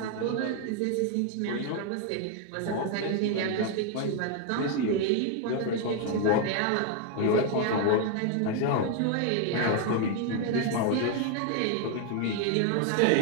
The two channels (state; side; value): different; both; correlation 0.00